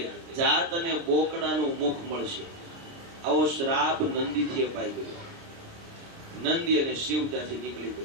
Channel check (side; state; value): left; late; 29 ms